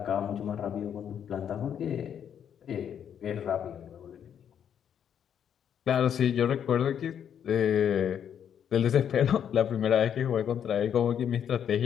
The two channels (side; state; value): right; quieter; 8.7 dB